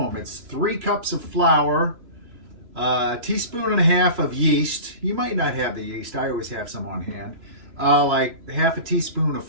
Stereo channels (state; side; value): late; left; 3.0 ms